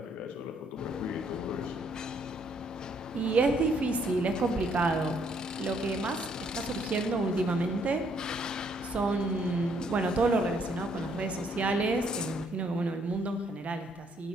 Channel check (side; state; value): both; normal; correlation 0.68